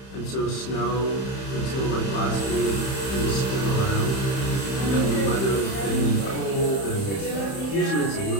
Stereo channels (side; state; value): right; late; 31 ms